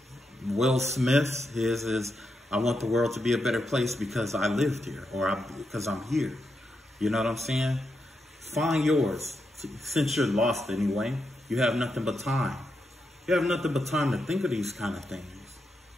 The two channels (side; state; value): both; normal; correlation 0.84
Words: Will Smith's, his is, I want the world to be a better place because I lived here, or because I'm here. You know what I'm saying? Find yours. Since you're lost anyway, you have nothing but time. You have nothing but time to think of these kind of things.